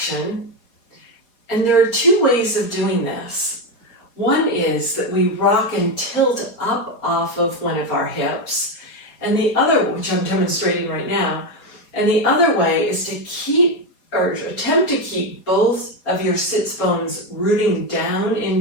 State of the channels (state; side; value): late; right; 4.3 ms